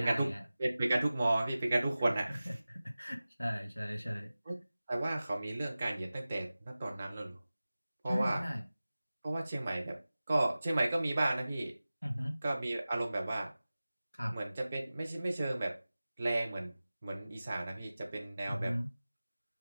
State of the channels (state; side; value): inverted; both; correlation -0.97